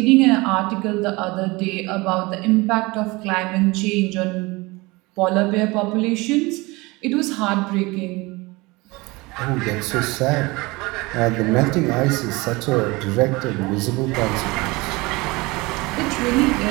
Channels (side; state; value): left; quieter; 23.4 dB